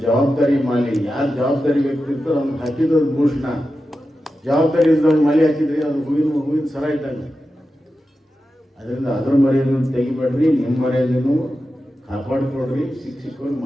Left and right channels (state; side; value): normal; both; correlation 0.91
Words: ಜವಾಬ್ದಾರಿ ಮಾಲಿ. ಯಾರು ಜವಾಬ್ದಾರಿ ವ್ಯಕ್ತಿ ಇರ್ತಾರೋ ಅವ್ನಿಗೆ ಹಾಕಿದ್ದು ಭೂಷಣ. ಜವಾಬ್ದಾರಿ ಇದ್ದವ್ನು ಮಾಲಿ ಹಾಕಿದ್ರಿ ಅದು ಹೂವಿನ ಸರ ಇದ್ದಂಗೆ. ಅದರಿಂದ ಅದ್ರ ಮರ್ಯಾದೆಯನ್ನು ತೆಗಿಬೇಡ್ರಿ. ನಿಮ್ಮ ಮರ್ಯಾದೆನೂ ಕಾಪಾಡಿಕೊಡ್ರಿ. ಶಿಕ್ಷಕರು